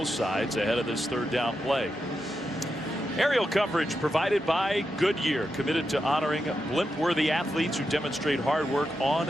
sides ahead of this 3rd down play. Aerial coverage provided by Goodyear, committed to honoring blimp-worthy athletes who demonstrate hard work on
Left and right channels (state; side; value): normal; both; correlation 0.87